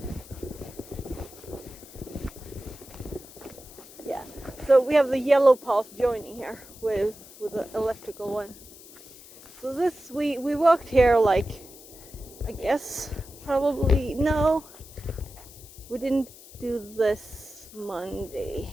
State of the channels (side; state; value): left; noise; hiss, 19 dB below the sound